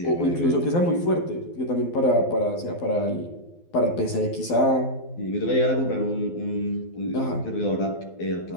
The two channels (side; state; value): right; late; 12 ms